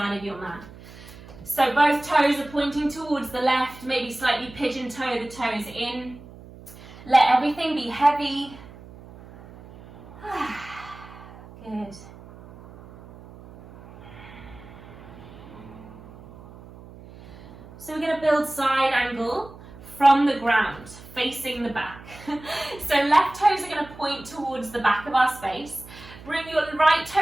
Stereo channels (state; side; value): noise; right; hum, 18 dB below the sound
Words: of your mat. So both toes are pointing towards the left, maybe slightly pigeon toe the toes in. Let everything be heavy. Good. So we're going to build side angle from the ground, facing the back. So left toes are going to point towards the back of our space. Bring your right